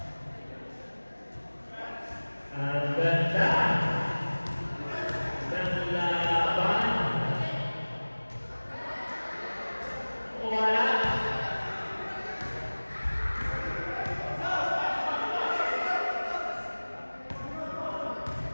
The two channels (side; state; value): both; inverted; correlation -1.00